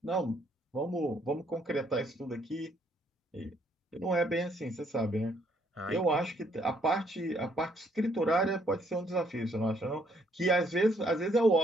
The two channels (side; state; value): both; normal; correlation 0.68